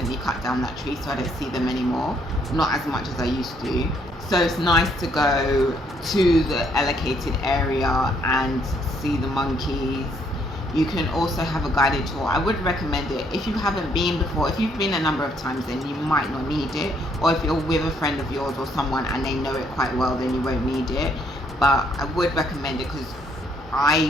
cut down that tree, so I don't see them anymore. Not as much as I used to. So it's nice to go to the allocated area and see the monkeys. You can also have a guided tour. I would recommend it if you haven't been before. If you've been a number of times, then you might not need it, or if you're with a friend of yours or someone and they know it quite well, then you won't need it. But I would recommend it, because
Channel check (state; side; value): normal; both; correlation 0.69